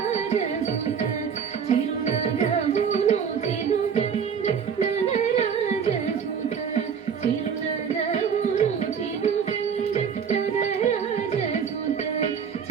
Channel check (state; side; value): quieter; left; 7.0 dB